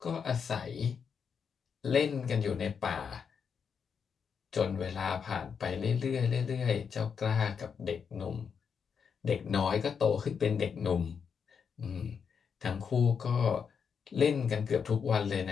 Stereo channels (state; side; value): quieter; right; 6.6 dB